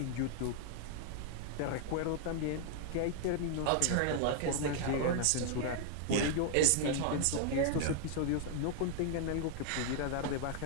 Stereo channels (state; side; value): different; both; correlation 0.00